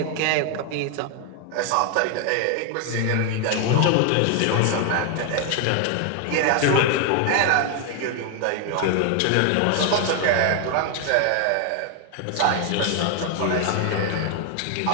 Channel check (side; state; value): both; different; correlation 0.00